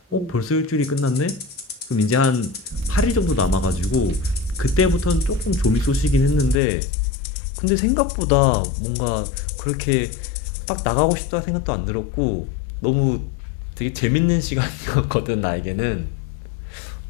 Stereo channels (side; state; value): right; drops out; at 6.6 s